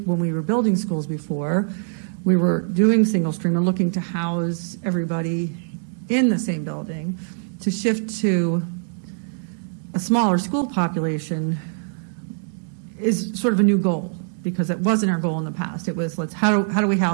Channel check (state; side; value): silent; left; digital silence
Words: when we were building schools before, we were doing single stream and looking to house everybody in the same building. To shift to a smaller school population is sort of a new goal, because it wasn't our goal in the past. It was, how do we